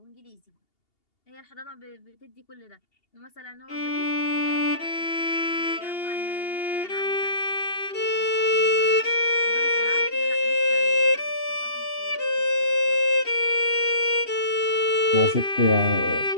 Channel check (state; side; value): late; right; 2.8 ms